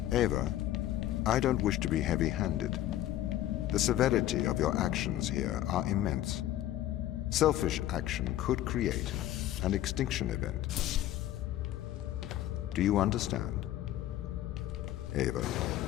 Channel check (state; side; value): quieter; right; 13.4 dB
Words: Ava, I don't wish to be heavy-handed. The severity of your actions here are immense. Selfish action could create an extinction event. Do you understand? Ava.